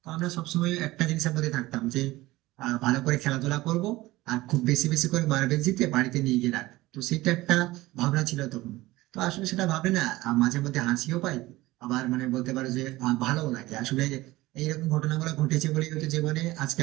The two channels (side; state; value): left; quieter; 18.7 dB